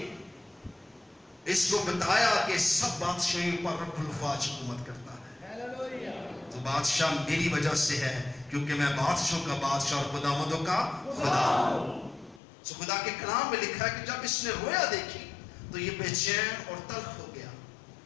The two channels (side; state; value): right; drops out; at 12.4 s